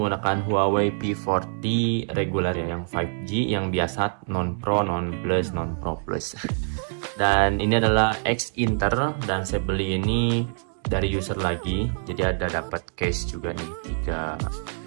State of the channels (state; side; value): silent; left; 62 dB below the other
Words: Huawei P40 regular ya, yang 5G, yang biasa, non Pro, non Plus, non Pro Plus. Dan ini adalah X Inter dan saya beli ini dari user lagi. Jadi ada dapat case juga nih,